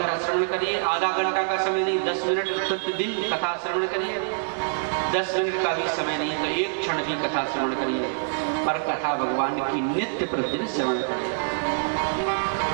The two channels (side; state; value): left; silent; 61 dB below the other